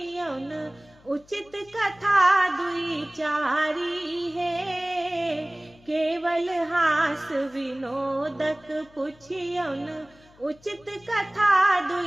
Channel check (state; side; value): noise; left; hum, 27 dB below the sound